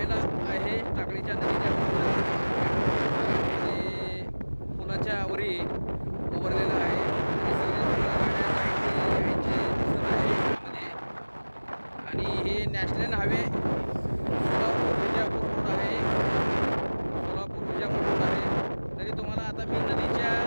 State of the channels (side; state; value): both; inverted; correlation -1.00